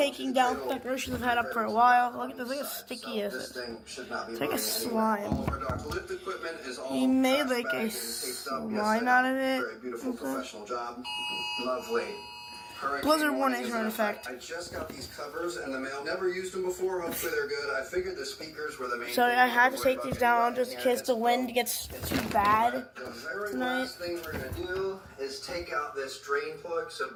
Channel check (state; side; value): identical; both; correlation 1.00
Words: down decorations I've had up for a while. Look at this, look how sticky is it. This thing should not be it's like a slime. All of our dock lift equipment is all he made like a slime out of it. Very beautiful professional job. Lovely. Blizzard warnings are in effect. I just got these covers in the mail. Never used them before. Hopefully they're good. I figured the speakers were the main. So I had to take these down just in case the wind gets too bad The very tonight. last thing we're going to do is take out this drain plug. So